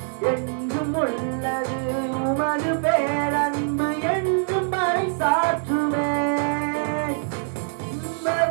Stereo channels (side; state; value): left; silent; 55 dB below the other